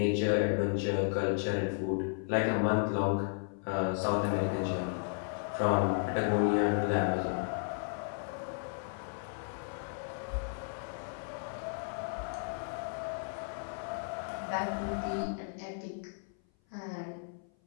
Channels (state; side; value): silent; right; 55 dB below the other